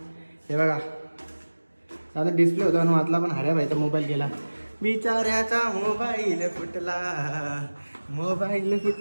हे बघा आता डिस्प्ले होता आणि वाचला, पण हऱ्या भाईचा मोबाईल गेला, बिचाऱ्याचा मोबाईल फुटला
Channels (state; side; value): inverted; both; correlation -1.00